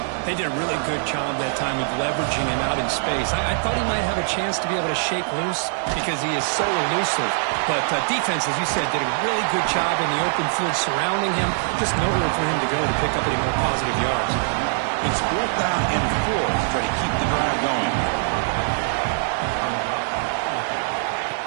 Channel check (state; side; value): silent; left; 57 dB below the other